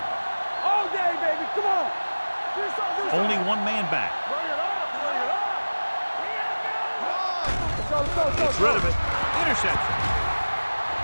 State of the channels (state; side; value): inverted; both; correlation -1.00